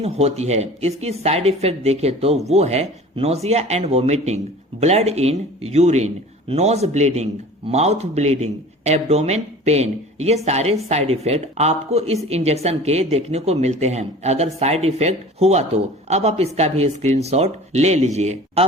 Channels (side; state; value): both; normal; correlation 0.42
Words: होती है। इसकी साइड इफेक्ट देखें तो वो है nausea and vomiting, blood in urine, nose bleeding, mouth bleeding, abdomen pain. ये सारे साइड इफेक्ट आपको इस इंजेक्शन के देखने को मिलते हैं। अगर साइड इफेक्ट हुआ तो अब आप इसका भी स्क्रीनशॉट ले लीजिए।